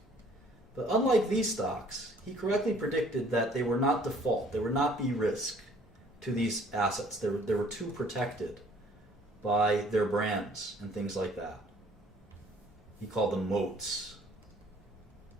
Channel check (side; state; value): both; normal; correlation 0.57